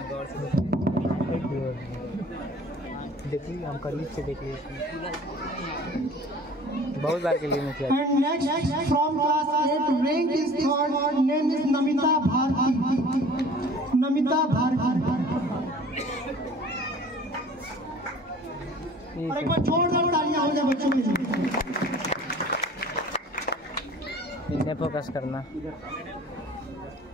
देखिए हम करीब से देख लीजिए, बहुत बार के लिए मैं किया। And next from class 8 rank is third, name is Namita Bharti. Namita Bharti. और एक बार जोरदार तालियां हो जाए बच्चों के लिए। इन्हें फोकस करना।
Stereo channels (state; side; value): normal; both; correlation 0.47